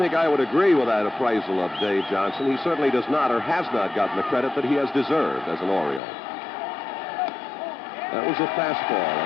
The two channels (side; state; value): right; drops out; at 6.0 s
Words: I would agree with that appraisal of Dave Johnson. He certainly does not or has not gotten the credit that he has deserved as an Oriole. That was a fastball